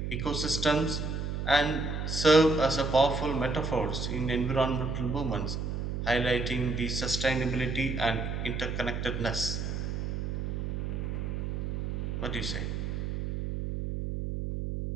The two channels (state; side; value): noise; right; hum, 3 dB below the sound